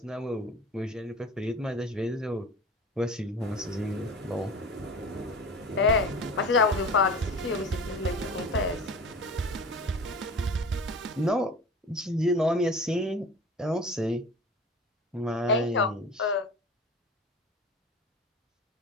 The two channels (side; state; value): both; normal; correlation 0.37